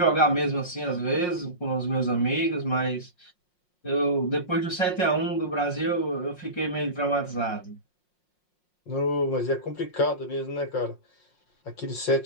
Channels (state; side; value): late; right; 5.6 ms